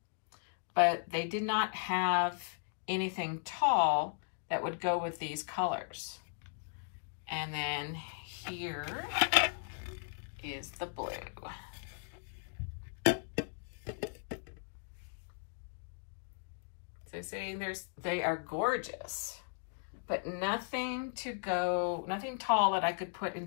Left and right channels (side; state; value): right; silent; digital silence